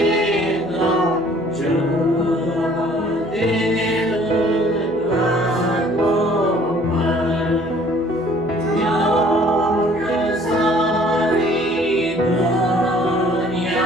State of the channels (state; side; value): noise; left; hum, 24 dB below the sound